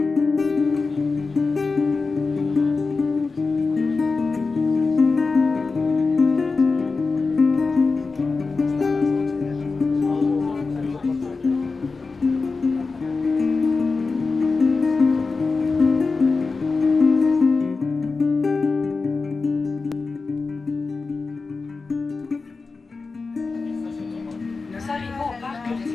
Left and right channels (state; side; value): quieter; right; 4.2 dB